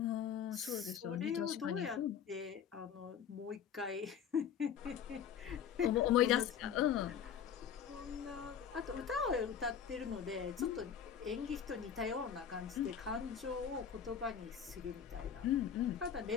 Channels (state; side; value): quieter; right; 8.1 dB